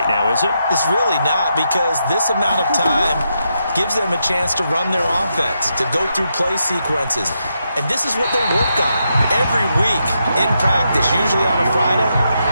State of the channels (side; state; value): both; inverted; correlation -0.82